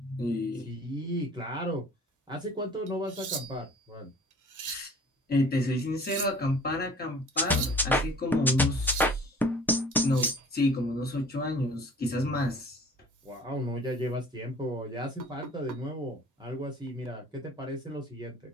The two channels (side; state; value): both; normal; correlation 0.48